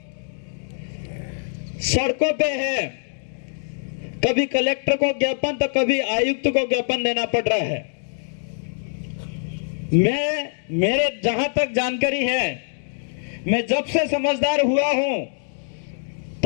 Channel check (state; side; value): silent; right; digital silence